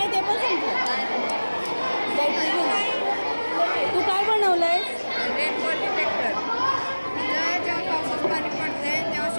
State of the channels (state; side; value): inverted; both; correlation -1.00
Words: ते पण संपलं. बॅटरी तू काय बनवलंय? Rainfall detector. जेव्हा पावसाचं पाणी पडते तेव्हा